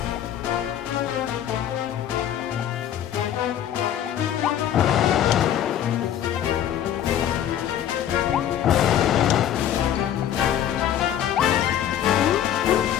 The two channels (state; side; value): quieter; right; 10.6 dB